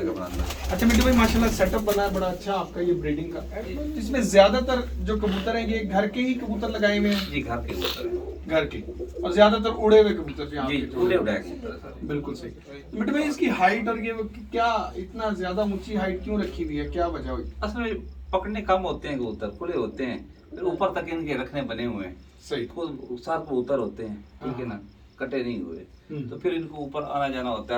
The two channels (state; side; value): identical; both; correlation 1.00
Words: अच्छा मिट्टू भाई, माशाल्लाह सेटअप बना है बड़ा अच्छा आपका ये ब्रीडिंग का। इसमें ज़्यादातर जो कबूतर हैं ये घर के ही कबूतर लगाए हुए हैं? जी, घर के कबूतर हैं। घर के, और ज़्यादातर उड़े हुए कबूतर भी जी, उड़े उड़ाए कबूतर सर। बिल्कुल सही। तो मिट्टू भाई, इसकी हाइट और ये क्या इतना ज़्यादा ऊंची हाइट क्यों रखी हुई है, क्या वजह हुई? असल में पकड़ने कम होते हैं कबूतर, खुले होते हैं, फिर ऊपर तक इनके रखने बने हुए हैं। सही। खुद सात कबूतर होते हैं, ठीक है ना, कटे नहीं हुए, तो फिर इनको ऊपर आना जाना होता